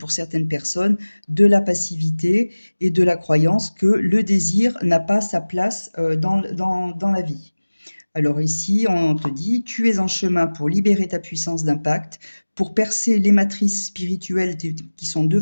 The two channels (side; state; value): both; inverted; correlation -1.00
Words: certaines personnes, de la passivité et de la croyance que le désir n'a pas sa place, dans la vie. Alors ici, on te dit: «Tu es en chemin pour libérer ta puissance d'impact, pour percer les matrices spirituelles qui sont